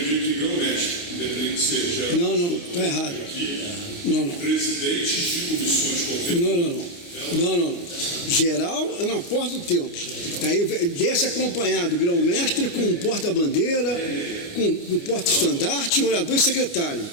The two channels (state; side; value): late; right; 29 ms